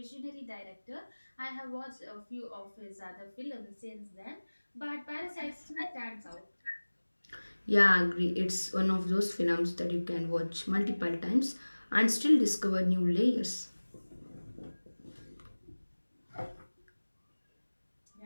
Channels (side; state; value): both; inverted; correlation -1.00